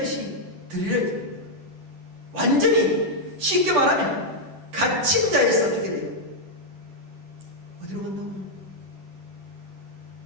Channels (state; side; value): late; left; 10 ms